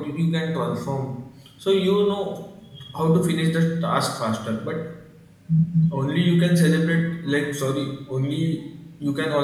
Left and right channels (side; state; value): both; identical; correlation 1.00